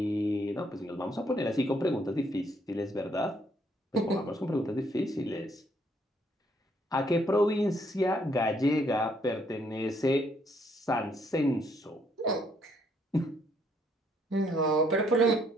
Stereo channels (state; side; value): normal; both; correlation 0.69